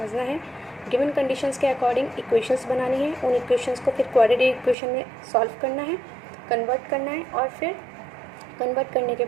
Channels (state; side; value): drops out; left; at 4.8 s